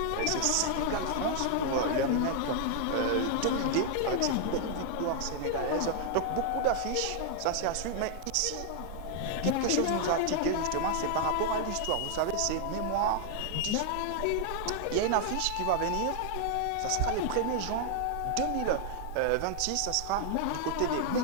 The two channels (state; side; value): different; both; correlation 0.00